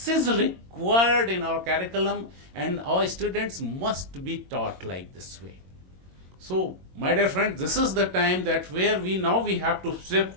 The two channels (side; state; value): left; late; 22 ms